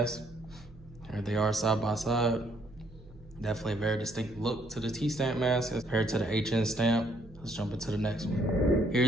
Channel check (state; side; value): noise; right; hum, 21 dB below the sound